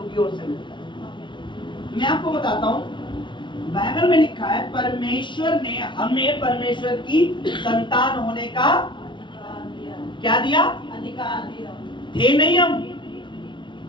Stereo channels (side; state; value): right; late; 0.24 ms